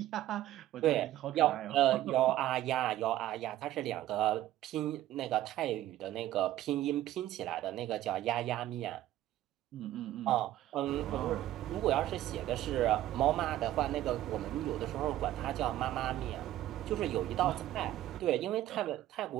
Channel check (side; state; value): left; quieter; 13.9 dB